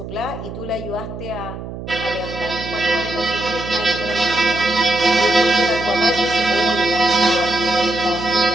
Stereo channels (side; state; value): right; noise; hum, 10 dB below the sound